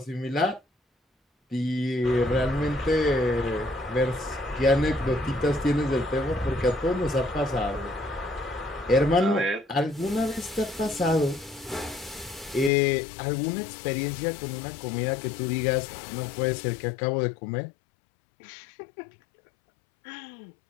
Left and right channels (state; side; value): drops out; right; at 12.7 s